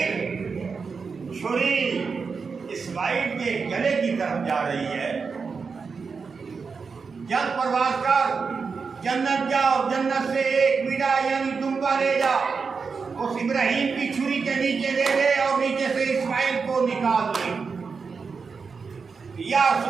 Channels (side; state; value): left; quieter; 5.2 dB